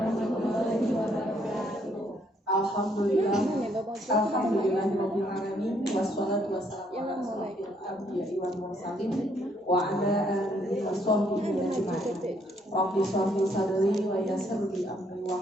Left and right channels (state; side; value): normal; both; correlation 0.69